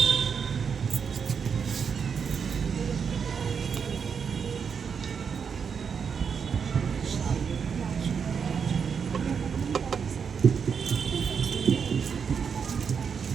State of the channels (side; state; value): left; quieter; 6.5 dB